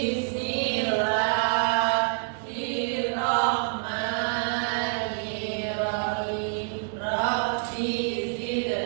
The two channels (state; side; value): silent; left; 60 dB below the other